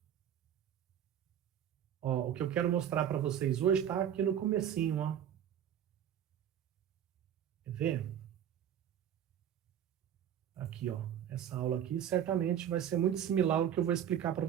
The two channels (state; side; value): quieter; left; 9.7 dB